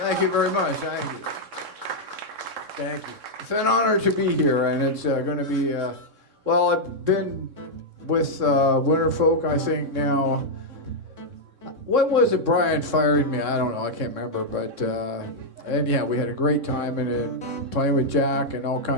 you very much. Thank you. Thank you. It's an honor to be here, and it's going to be, well, I've been with Winterfolk, I think, now. What was it Brian fired me? I don't know. I can't remember. But, and yeah, we had a great time in it, playing with Jack and all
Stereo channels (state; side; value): late; left; 3.6 ms